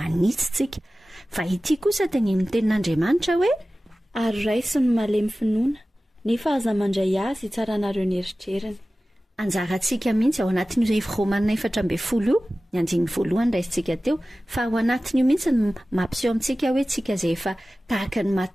Fa ity kosa teny amin'ny tenin'Andriamanitra hoe ary raiso ny malemy finoana nefa aza mandray azy hitsaranareo ny eritreriny. Anjarantsika mihitsy ao anatin'izay Romanina 4:12 ny anjiny voalohany raisintsika teo fa ao anatiny io mihitsy ny mampiseho amintsika hoe tsika izay efa tahaka ny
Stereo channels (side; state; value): both; normal; correlation 0.96